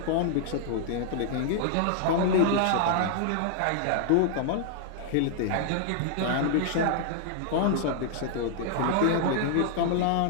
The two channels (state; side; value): different; both; correlation -0.01